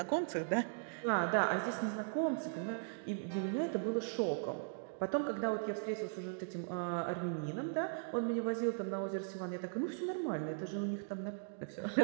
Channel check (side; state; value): left; silent; digital silence